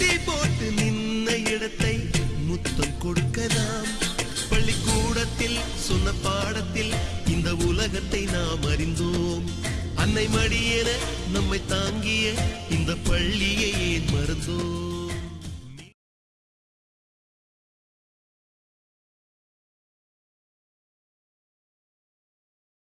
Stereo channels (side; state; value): both; identical; correlation 1.00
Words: போட்டு நின்ன இடத்தை முத்தம் கொடுக்கலாம் பள்ளிக்கூடத்தில் சொன்ன பாடத்தில் இந்த உலகத்தை நாம் அறிந்தோம் அன்னை மடியென நம்மை தாங்கிய இந்த பள்ளியை ஏன் மறந்தோம்